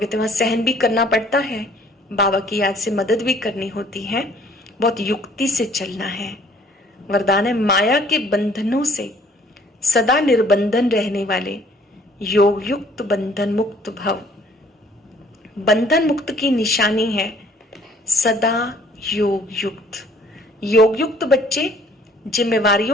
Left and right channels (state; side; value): normal; both; correlation 0.57